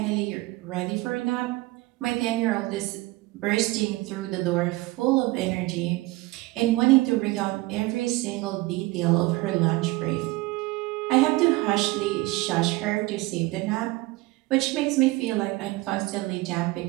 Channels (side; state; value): left; quieter; 21.0 dB